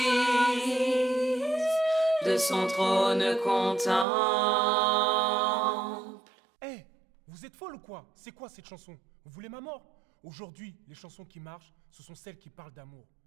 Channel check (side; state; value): left; drops out; at 4.0 s